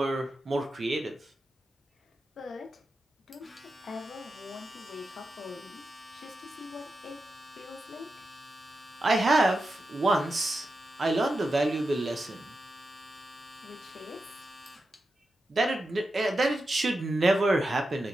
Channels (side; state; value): both; normal; correlation 0.89